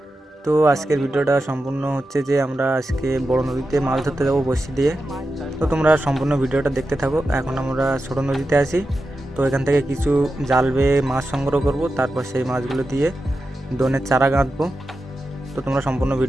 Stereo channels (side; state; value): both; normal; correlation 0.91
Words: তো আজকের ভিডিওটা সম্পূর্ণ হচ্ছে যে আমরা আজকে বড় নদীতে মাছ ধরতে যাবো বড়শি দিয়ে। তো তোমরা সম্পূর্ণ ভিডিওটা দেখতে থাকো। এখন আমরা ছোট নদীতে আছি, তো এখান থেকে কিছু জাল বেয়ে মাছ সংগ্রহ করব, তারপর সেই মাছগুলো দিয়ে দোনের চারা গাঁথবো। তো তোমরা সম্পূর্ণ